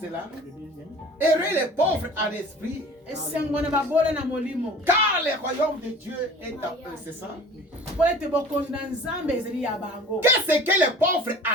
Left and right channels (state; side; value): normal; both; correlation 0.44